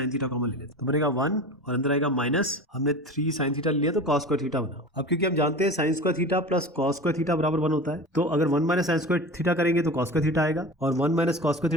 थीटा कॉमन ले लेते हैं तो बनेगा 1 और अंदर आएगा माइनस, हमने 3 साइन थीटा लिया तो cos स्क्वायर थीटा बना। अब क्योंकि हम जानते हैं sign square theta plus cos square theta बराबर 1 होता है, तो अगर 1 माइनस साइन स्क्वायर थीटा करेंगे तो cos स्क्वायर थीटा आएगा और 1 माइनस cos स्क्वायर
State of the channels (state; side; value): normal; both; correlation 0.33